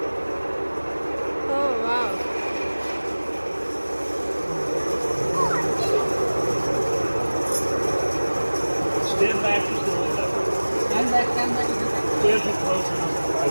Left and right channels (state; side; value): inverted; both; correlation -1.00